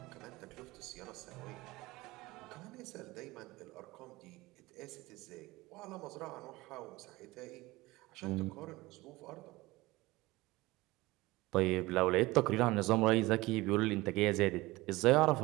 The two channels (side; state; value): left; quieter; 20.3 dB